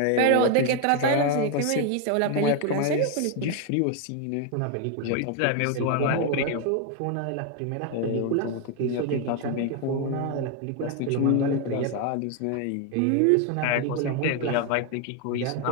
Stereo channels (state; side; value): different; both; correlation 0.01